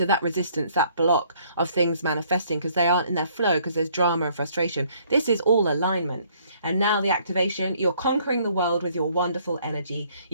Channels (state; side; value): inverted; both; correlation -0.63